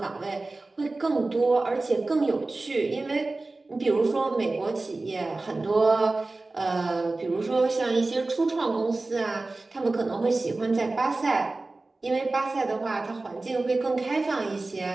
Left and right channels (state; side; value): quieter; left; 3.2 dB